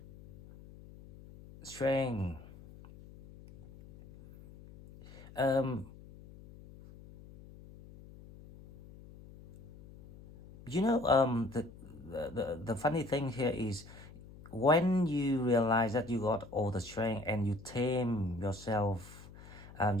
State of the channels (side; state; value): left; noise; hum, 19 dB below the sound